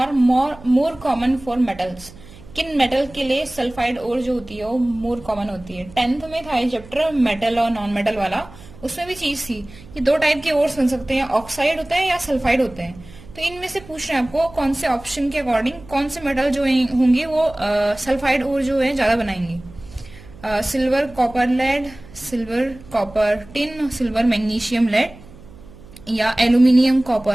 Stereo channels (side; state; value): right; noise; hum, 20 dB below the sound